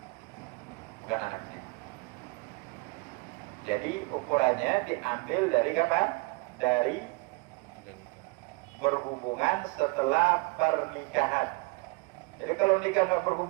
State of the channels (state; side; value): quieter; left; 27.9 dB